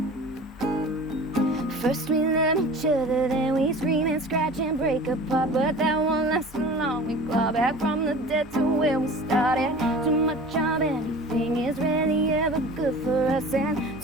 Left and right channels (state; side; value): normal; both; correlation 0.40